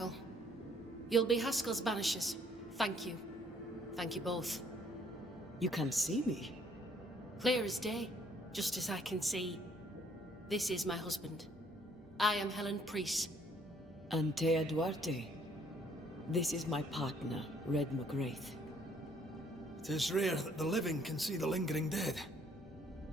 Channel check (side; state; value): both; normal; correlation 0.64